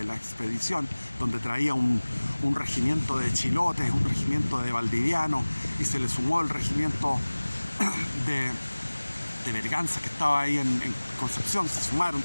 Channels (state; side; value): inverted; both; correlation -1.00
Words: la expedición, donde traía un regimiento de chilotes, un regimiento de valdivianos, y se le sumó el regimiento de Berganza, que estaba ahí en Concepción, se sumaron